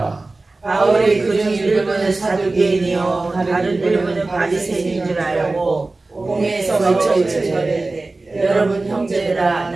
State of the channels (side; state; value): left; quieter; 3.3 dB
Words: 바울이 그중 일부는 사두개인이요 다른 일부는 바리새인인 줄 알고 공회에서 외쳐이르되 여러분 형제들아